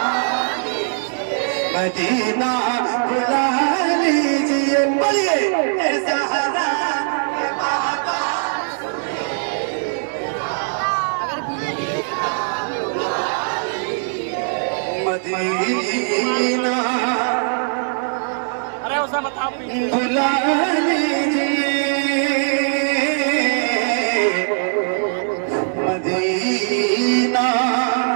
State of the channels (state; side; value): silent; left; digital silence